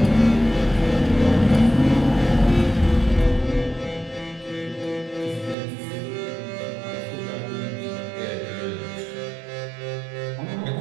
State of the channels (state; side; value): drops out; left; at 5.6 s